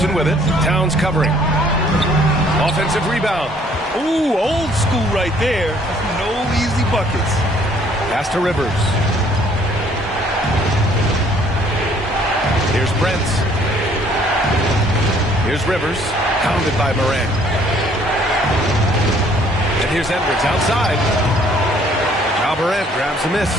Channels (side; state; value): both; normal; correlation 0.61